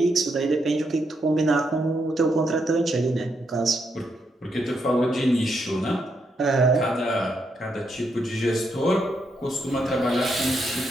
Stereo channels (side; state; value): both; normal; correlation 0.79